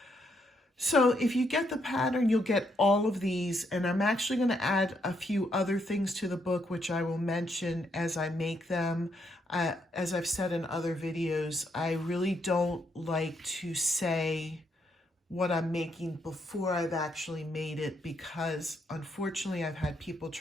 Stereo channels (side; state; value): both; normal; correlation 0.76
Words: So if you get the pattern, you'll get all of these, and I'm actually going to add a few other things to the book, which I will mention as I make them. As I've said in other videos, I really don't like to say what I'm making before I've actually made it, because unfortunately I've had people